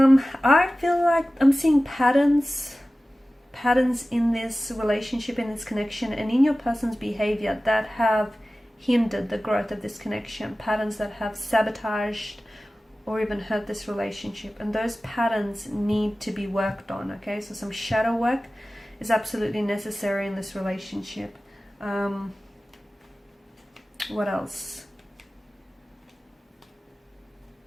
feel like I'm seeing patterns in this relationship, in this connection, and in your person's behavior that have hindered the growth of this connection, patterns that have sabotaged or even hurt this relationship, and those patterns need to be worked on. Okay, so some shadow work is absolutely necessary in this relationship. What else?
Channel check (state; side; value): normal; both; correlation 0.96